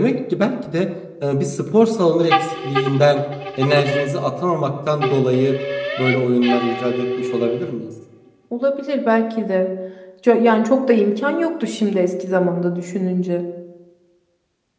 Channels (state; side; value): identical; both; correlation 1.00